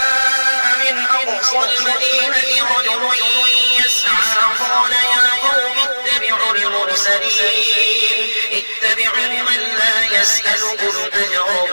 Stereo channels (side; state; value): both; inverted; correlation -1.00